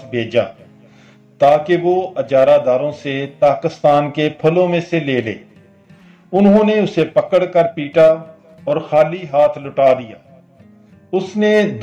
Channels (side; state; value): both; identical; correlation 1.00